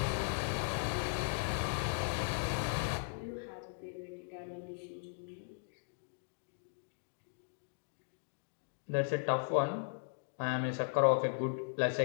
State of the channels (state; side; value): silent; right; digital silence